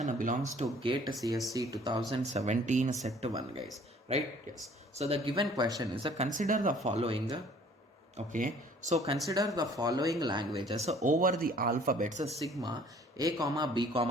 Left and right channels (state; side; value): normal; both; correlation 0.55